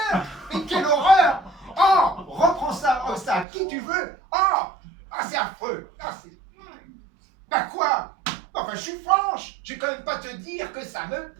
Mais quelle horreur! Oh, reprends ça, à qui tu veux! C'est affreux! Bah quoi? Enfin, je suis franche! Je vais quand même pas te dire que ça me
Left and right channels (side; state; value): left; drops out; at 3.5 s